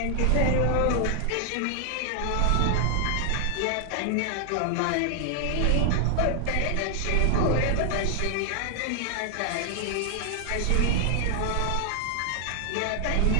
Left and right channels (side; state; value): both; different; correlation 0.00